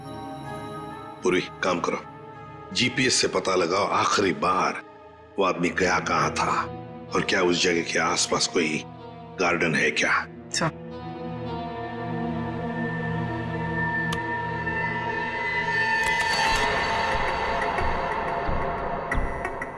पूरी काम करो, जीपीएस से पता लगाओ आखिरी बार वो आदमी गया कहाँ था और क्या उस जगह के आसपास कोई गार्डन है क्या?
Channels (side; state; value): both; identical; correlation 1.00